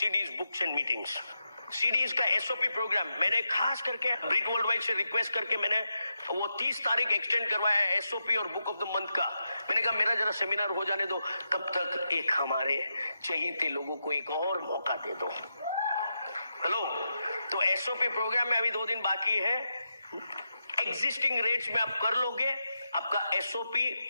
books and meetings. CDs का SOP प्रोग्राम मैंने खास करके ब्रिक वर्ल्ड वाइड से रिक्वेस्ट करके मैंने वो 30 तारीख एक्सटेंड करवाया है, SOP और बुक ऑफ द मंथ का। मैंने कहा मेरा जरा सेमिनार हो जाने दो, तब तक एक हमारे चहेते लोगों को एक और मौका दे दो। हेलो, तो SOP प्रोग्राम में अभी 2 दिन बाकी है। एग्जिस्टिंग रेट्स में आप कर लोगे, आपका SOP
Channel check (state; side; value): inverted; both; correlation -0.86